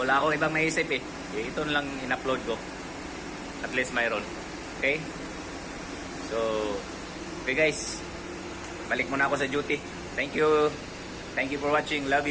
akong ibang maisip eh. Ito lang in-upload ko. At least mayroon. Okay? So, okay guys. Balik muna ako sa duty. Thank you. Thank you for watching. Love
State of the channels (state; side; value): identical; both; correlation 1.00